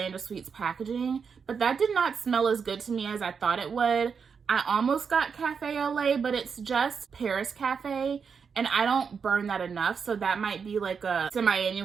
of Sweets packaging, but that did not smell as good to me as I thought it would. I almost got Cafe au lait, but it's just Paris Cafe, and I don't burn that enough, so that might be like a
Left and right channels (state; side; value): quieter; left; 6.1 dB